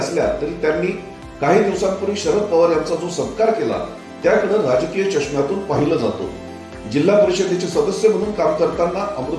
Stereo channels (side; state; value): both; identical; correlation 1.00